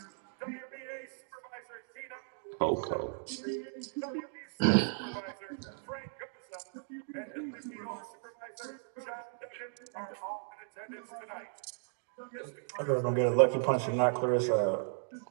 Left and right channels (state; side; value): silent; left; digital silence